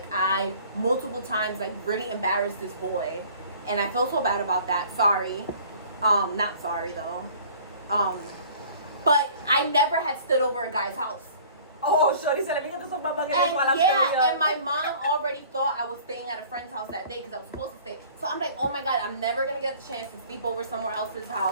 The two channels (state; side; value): inverted; both; correlation -0.50